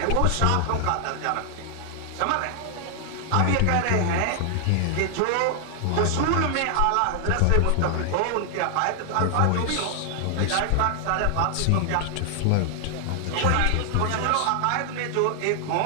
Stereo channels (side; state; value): both; different; correlation 0.00